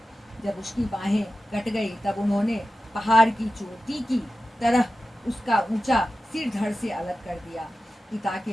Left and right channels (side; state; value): both; normal; correlation 0.93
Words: जब उसकी बाहें कट गई तब उन्होंने पहाड़ की चोटी की तरह उसका ऊंचा सिर धड़ से अलग कर दिया। पिता